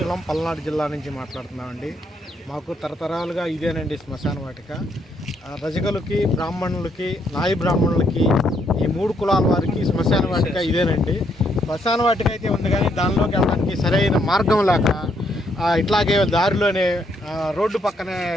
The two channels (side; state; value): both; normal; correlation 0.73